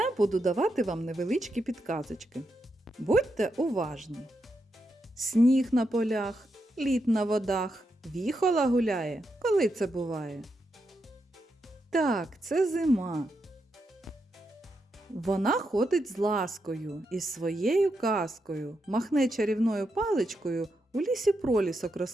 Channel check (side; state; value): both; normal; correlation 0.84